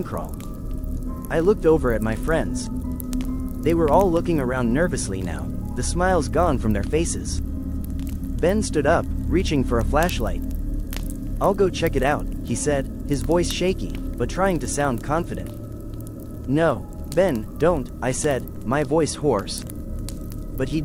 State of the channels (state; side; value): identical; both; correlation 1.00